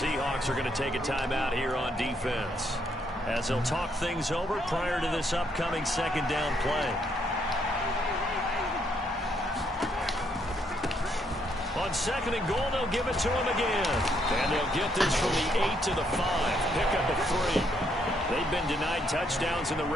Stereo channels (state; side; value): normal; both; correlation 0.73